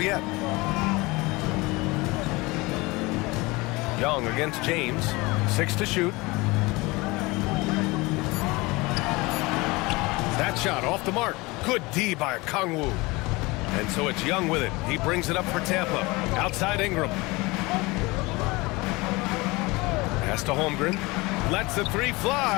yet. Young against James. 6 to shoot. That shot off the mark. Good D by Kongwu. And so it's Young with it. He brings it up for Tampa. Outside Ingram. Pass to Holmgren. Lets the 3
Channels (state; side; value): quieter; right; 23.4 dB